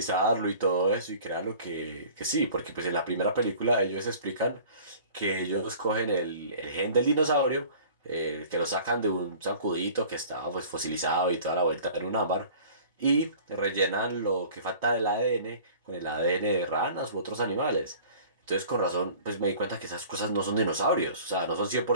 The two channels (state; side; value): inverted; both; correlation -0.46